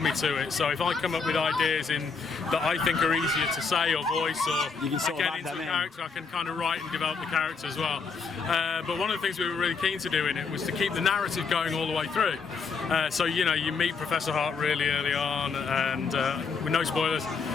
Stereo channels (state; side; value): quieter; right; 5.1 dB